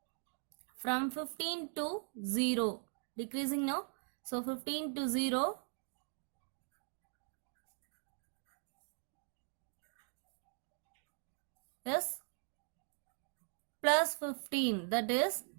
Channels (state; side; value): silent; left; 51 dB below the other